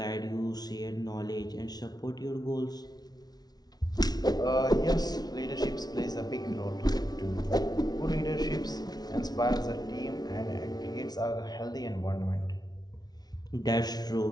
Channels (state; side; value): late; right; 0.19 ms